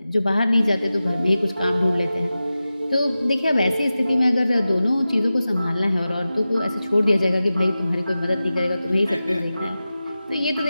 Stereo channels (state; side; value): inverted; both; correlation -0.94